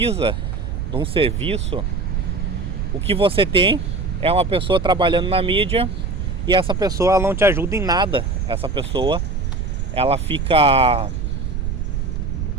de um serviço, o que você tem é uma pessoa trabalhando na mídia, e essa pessoa, ela não te ajuda em nada. Essa pessoa, ela fica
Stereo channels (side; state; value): right; noise; rumble, 2 dB below the sound